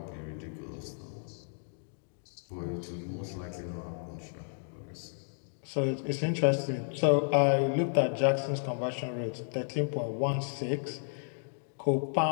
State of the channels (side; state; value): right; silent; digital silence